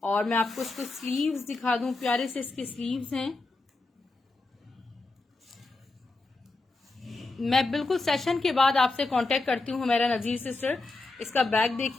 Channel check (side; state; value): right; quieter; 3.4 dB